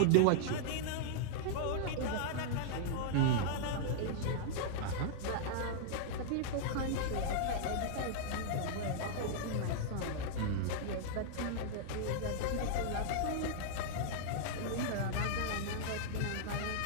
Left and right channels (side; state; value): both; different; correlation -0.01